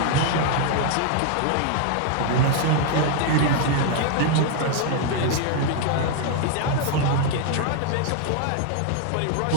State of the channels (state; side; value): different; both; correlation 0.00